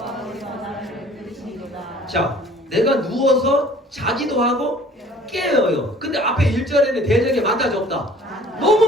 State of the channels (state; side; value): normal; both; correlation 0.51